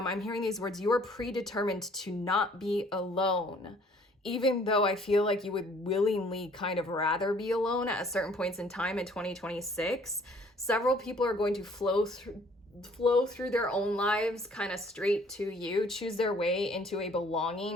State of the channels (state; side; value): normal; both; correlation 0.58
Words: hearing these words, you are predetermined to not be alone. Even though I feel like you would willingly kind of rather be alone at certain points in time in 2026, several people are going to flow through their own lives kind of straight to you, choose their way into a